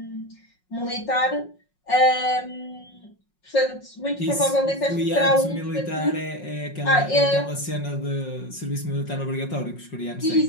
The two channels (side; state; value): right; late; 5.5 ms